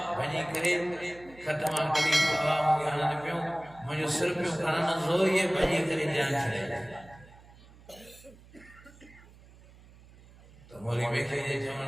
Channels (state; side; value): noise; right; hum, 23 dB below the sound